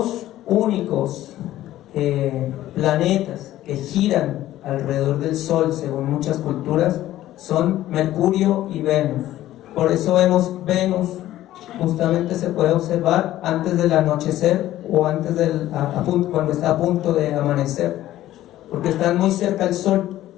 únicos planetas que giran alrededor del Sol, según muchas culturas, son Mercurio y Venus. Por eso vemos Venus, justamente se puede observar antes del anochecer o antes cuando está a punto de amanecer, porque están muy cerca al Sol.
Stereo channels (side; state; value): right; quieter; 14.1 dB